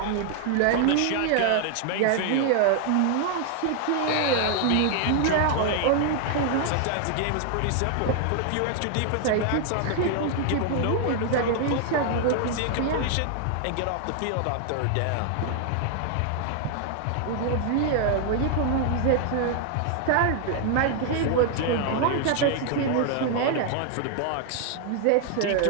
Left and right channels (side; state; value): both; different; correlation 0.00